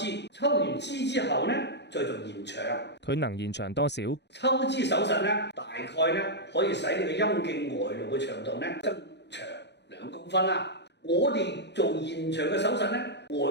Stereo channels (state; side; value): late; right; 0.50 ms